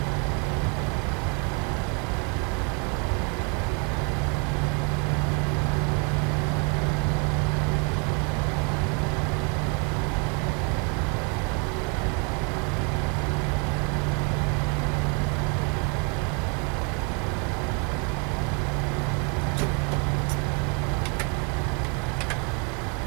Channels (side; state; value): left; quieter; 35.3 dB